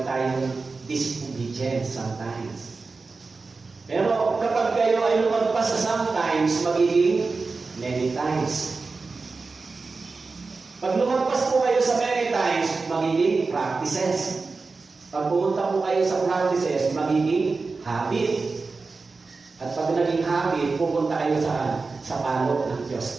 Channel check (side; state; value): left; quieter; 4.1 dB